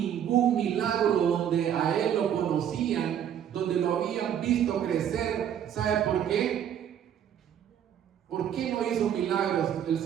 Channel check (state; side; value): quieter; left; 9.5 dB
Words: milagro donde a Él lo conocían, donde lo habían visto crecer. ¿Sabe por qué? ¿Por qué no hizo milagros el